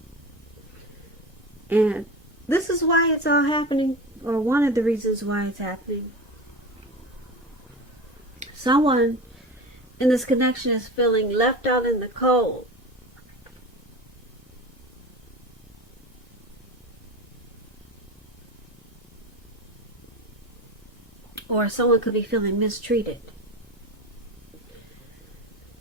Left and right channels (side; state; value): both; normal; correlation 0.29